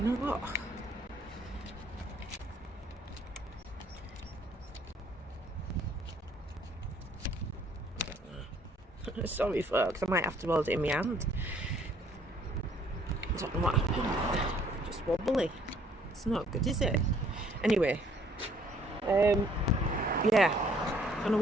or what? I don't know. Sorry folks, I might have to hold it in my hand. I don't know what happened. Just wobbly. It's not good, is it? Anyway, yeah, I'm gonna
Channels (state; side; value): normal; both; correlation 0.62